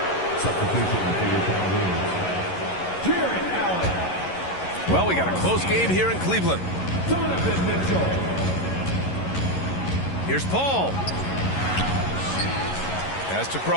Well, we got a close game here in Cleveland. Here's Paul. Pass to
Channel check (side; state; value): right; late; 11 ms